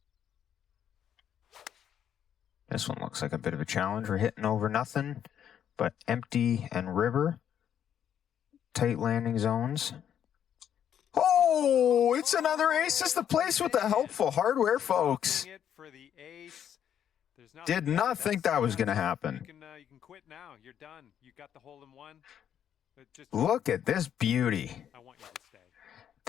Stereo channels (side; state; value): right; quieter; 9.4 dB